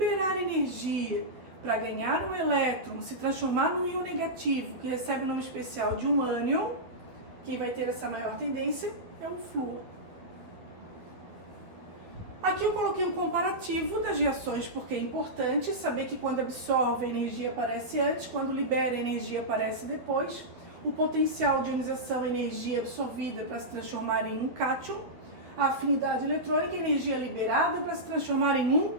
energia para ganhar um elétron, se transformar num íon negativo, que recebe o nome especial de um ânion, quem vai ter essa maior tendência é o flúor. Aqui eu coloquei um comparativo das reações, porque é importante saber que quando absorve a energia aparece antes, quando libera a energia aparece depois. O potencial de ionização, energia absorvida para se transformar em um cátion. A afinidade eletrônica, energia liberada para se transformar em um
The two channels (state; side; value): late; left; 12 ms